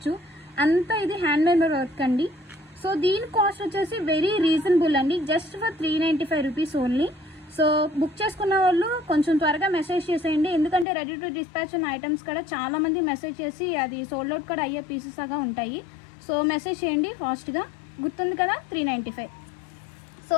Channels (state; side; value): drops out; right; at 10.9 s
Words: అంతా ఇది హ్యాండ్ మేడ్ వర్క్ అండి. సో దీని కాస్ట్ వచ్చేసి వెరీ రీజనబుల్ అండి. Just for 395 rupees only. So book చేసుకున్న వాళ్ళు కొంచెం త్వరగా మెసేజ్ చేసేయండి. ఎందుకంటే రెడీ టు డిస్పాచ్ ఉన్న ఐటమ్స్ కూడా చాలా మంది మెసేజ్ చేసి అది సోల్డ్ అవుట్ కూడా అయ్యే పీసెస్ లాగా ఉంటాయి. సో మెసేజ్ చేయండి ఫాస్ట్గా. గుర్తుంది కదా 395. సో